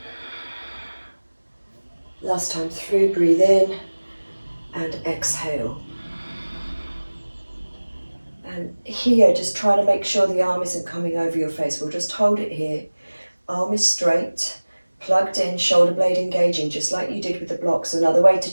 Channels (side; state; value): both; inverted; correlation -1.00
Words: Last time through, breathe in and exhale. And here, just trying to make sure the arm isn't coming over your face. We'll just hold it here. Arm is straight, plugged in, shoulder blade engaging, just like you did with the blocks. Another way to